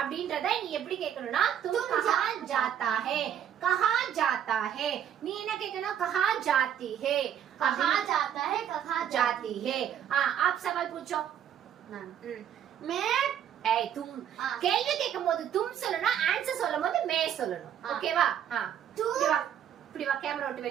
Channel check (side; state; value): left; quieter; 9.6 dB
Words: நீ எப்படி கேட்கணும்னா तुम कहां जाता है. कहां जाता है. நீ என்ன கேட்கணும்? कहां जाती है. कहां जाता है? कहां जाती है. आप सवाल पूछो. मैं तुम கேள்வி கேட்கும்போது तुम சொல்லணும். ஆன்சர் சொல்லும்போது மே சொல்லணும். ஓகேவா? இப்படி வா கேமரா விட்டு